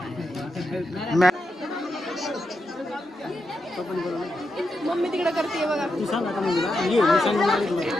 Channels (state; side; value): normal; both; correlation 0.86